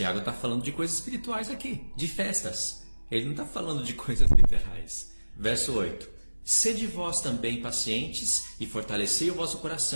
está falando de coisas espirituais aqui, de festas. Ele não está falando de coisas literais. Verso 8. Sede vós também pacientes e fortalecei o vosso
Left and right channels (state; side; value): inverted; both; correlation -1.00